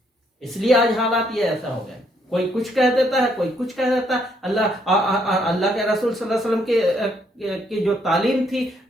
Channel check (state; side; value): normal; both; correlation 0.71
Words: اس لیے آج حالات یہ ایسا ہو گئے، کوئی کچھ کہہ دیتا ہے، کوئی کچھ کہہ دیتا ہے. اللہ کے رسول صلی اللہ علیہ وسلم کی جو تعلیم تھی،